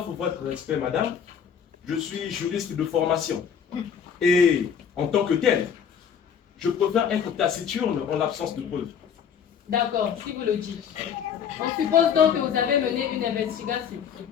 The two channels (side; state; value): right; quieter; 7.6 dB